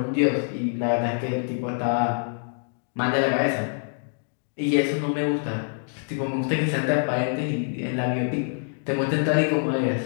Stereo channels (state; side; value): silent; right; digital silence